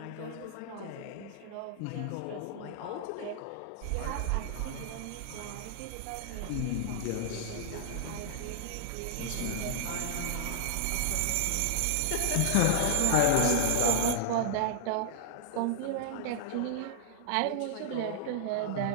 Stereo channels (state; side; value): different; both; correlation -0.01